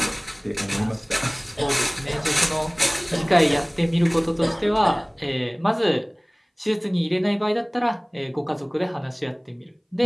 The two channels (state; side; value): identical; both; correlation 1.00